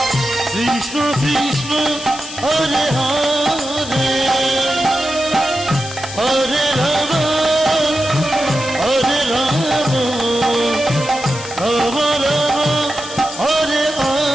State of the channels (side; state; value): left; noise; hiss, 11 dB below the sound